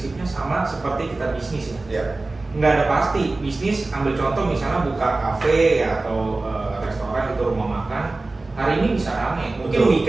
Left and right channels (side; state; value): left; quieter; 3.2 dB